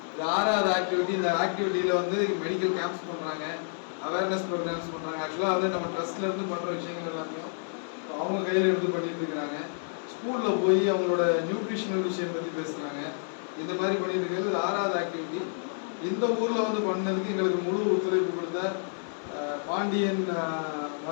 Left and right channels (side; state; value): right; silent; 58 dB below the other